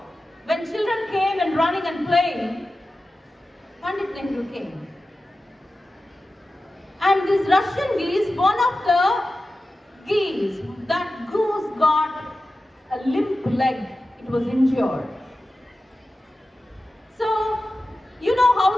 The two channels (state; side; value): normal; both; correlation 0.94